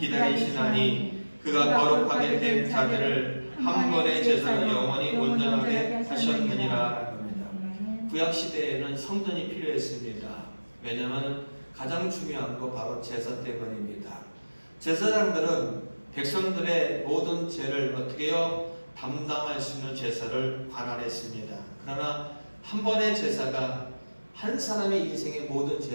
기다리시나니 그가 거룩하게 된 자들을 한 번의 제사로 영원히 온전하게 하셨느니라. 구약시대에는 성전이 필요했습니다. 왜냐하면 가장 중요한 거 바로 제사 때문입니다. 제사장들은 백성들의 모든 죄를 어떻게 해요? 담당할 수 있는 제사를 관할했습니다. 그러나 한 번의 제사가 한 사람의 인생의 모든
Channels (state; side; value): inverted; both; correlation -1.00